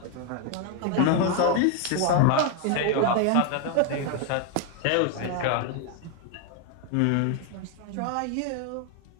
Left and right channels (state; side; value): different; both; correlation 0.01